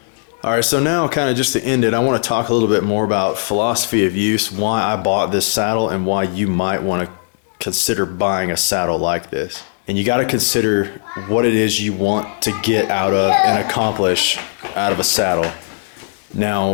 All right, so now kind of just to end it, I want to talk a little bit more about philosophy of use, why I bought this saddle, and why you might want to consider buying a saddle like this. And you got to consider what it is you want to get out of and accomplish out of a saddle.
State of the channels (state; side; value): silent; right; 64 dB below the other